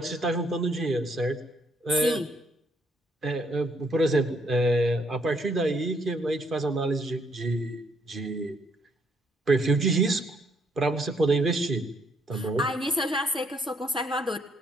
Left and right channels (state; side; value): normal; both; correlation 0.70